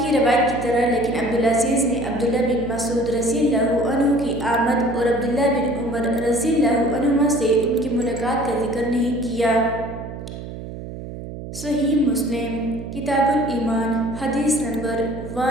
کی روایت کی طرح لیکن عبدالعزیز نے عبداللہ بن مسعود رضی اللہ عنہ کی آمد اور عبداللہ بن عمر رضی اللہ عنہما سے ان کی ملاقات کا ذکر نہیں کیا۔ صحیح مسلم کتاب الایمان حدیث نمبر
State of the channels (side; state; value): right; noise; hum, 10 dB below the sound